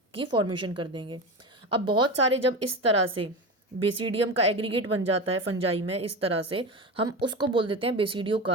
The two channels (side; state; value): both; normal; correlation 0.24